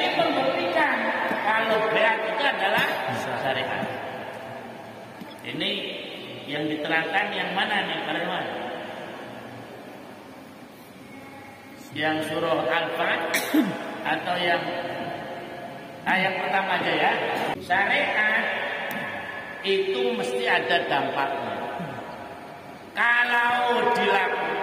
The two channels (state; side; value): identical; both; correlation 1.00